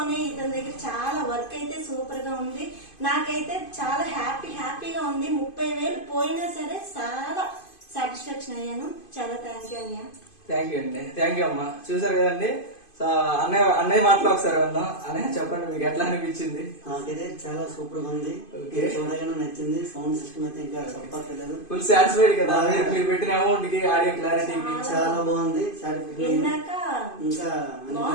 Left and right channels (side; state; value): right; late; 2.5 ms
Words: ఇతని దగ్గర చాలా వర్క్ అయితే సూపర్ గా ఉంది. నాకైతే చాలా హ్యాపీగా ఉంది. 30,000 పోయినా సరే చాలా సాటిస్ఫాక్షన్ అయ్యాను. చాలా థ్యాంక్ యూ అన్నయ్య. థ్యాంక్ యూ అండి. థ్యాంక్ యూ అమ్మా. చూసారు కదండి. సో అన్నయ్య మాటలో ఒకసారి వెళ్దాం. అన్నయ్య చెప్పండి, మీకు ఎట్లా అనిపించింది? నాకైతే చాలా సూపర్ గా ఉంది. చూడగానే నచ్చింది. సౌండ్ సిస్టమ్ అయితే ఇంకా చెప్పట్లేదు. ఫుల్ సాటిస్ఫైడ్ కదా మీరు పెట్టిన అమౌంట్ కి, ఆడియో క్లారిటీకి చాలా బాగుంది. ఇంకా